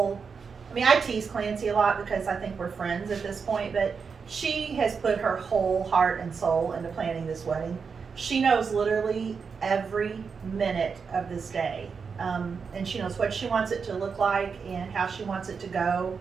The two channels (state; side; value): quieter; left; 5.6 dB